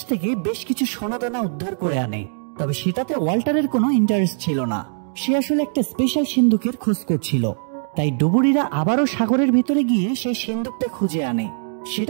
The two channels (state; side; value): silent; left; digital silence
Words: থেকে বেশ কিছু সোনাদানা উদ্ধার করে আনে, তবে সেটাতে ওয়াল্টারের কোনো ইন্টারেস্ট ছিল না। সে আসলে একটা স্পেশাল সিন্ধুকের খোঁজ করছিল। তাই ডুবুরিরা আবারও সাগরের ভিতরে গিয়ে সেই সিন্ধুকটা খুঁজে আনে।